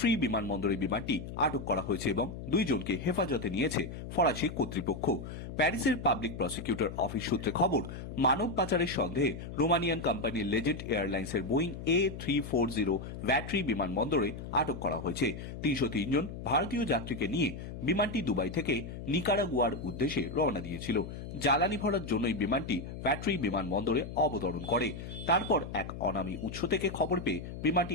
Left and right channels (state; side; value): noise; left; hum, 9 dB below the sound